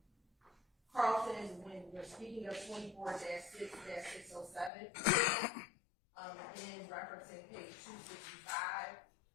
Carlton when we're speaking of 24-6-607, again referencing page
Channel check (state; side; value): drops out; right; at 4.7 s